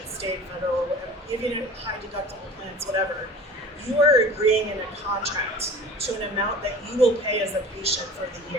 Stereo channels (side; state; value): both; normal; correlation 0.40